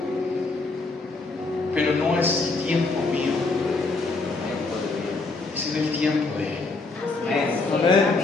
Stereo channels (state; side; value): quieter; right; 3.6 dB